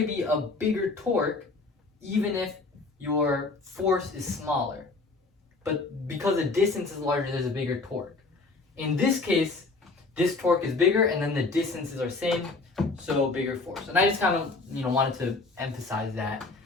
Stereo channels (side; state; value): right; quieter; 3.6 dB